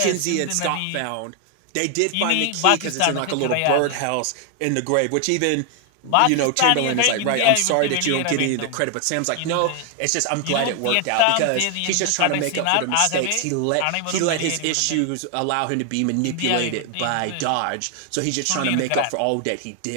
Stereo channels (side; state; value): both; different; correlation 0.00